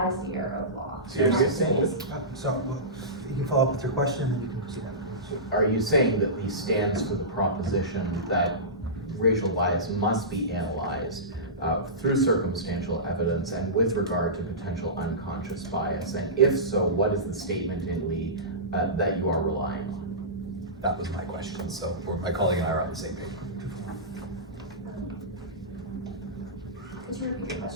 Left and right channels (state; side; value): normal; both; correlation -0.20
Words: as the error of law. So you're saying So you can follow up with your question and you can proceed afterwards. Are you saying that Lee stands for the proposition that racial bias must be analyzed through circumstantial evidence and with regard to potential unconscious bias? And if so, what is the statement in Lee that you are relying on? That was my question, so my colleague and I are on the same page. Could you repeat your